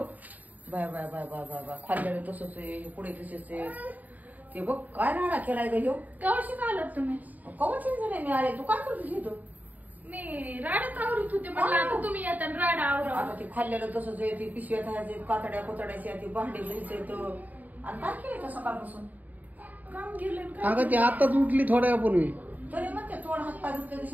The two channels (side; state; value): left; late; 0.080 ms